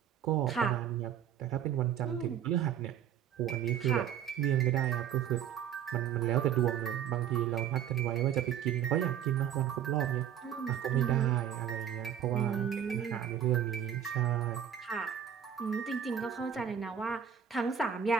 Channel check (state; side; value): quieter; left; 9.2 dB